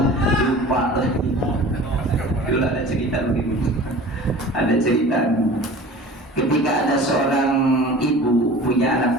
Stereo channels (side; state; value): both; normal; correlation 0.41